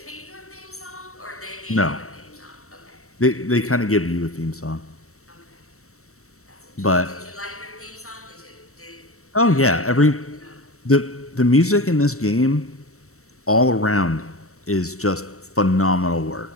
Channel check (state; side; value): late; right; 0.64 ms